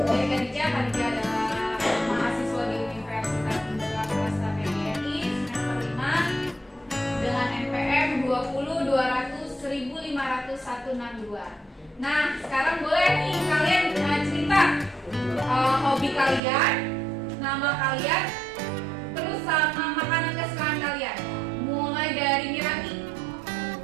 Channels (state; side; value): drops out; left; at 16.4 s